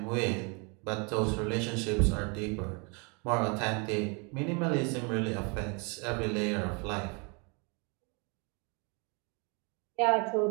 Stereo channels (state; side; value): quieter; left; 33.1 dB